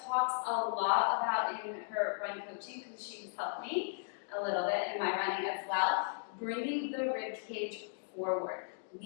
talks a lot about in her run coaching because she's helped me a little bit in my running as well, bringing the rib cage forward,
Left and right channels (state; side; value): silent; right; digital silence